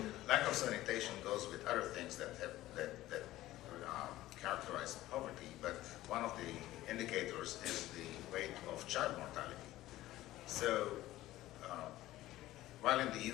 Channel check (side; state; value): right; quieter; 15.7 dB